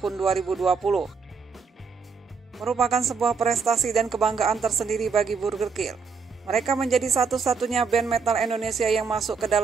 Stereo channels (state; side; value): quieter; left; 5.3 dB